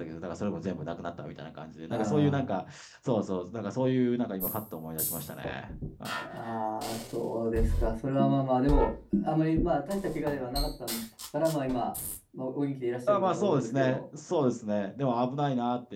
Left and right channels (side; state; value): both; identical; correlation 1.00